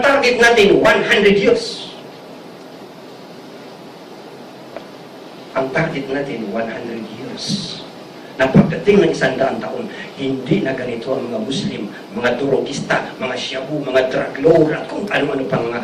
target natin 100 years. Ang target natin 100 years. Na pagdating ng 100 taon, hindi na ganito ang mga Muslim, mga durogista, mga shabu, mga drug lord, at kung ano-ano pang mga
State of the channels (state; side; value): identical; both; correlation 1.00